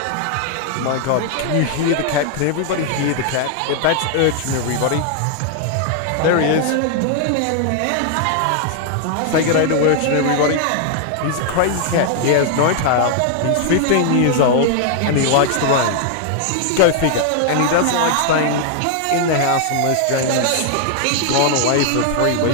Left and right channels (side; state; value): both; different; correlation 0.00